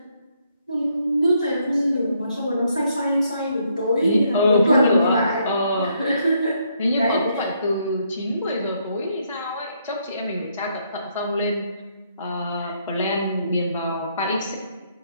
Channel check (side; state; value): both; inverted; correlation -0.73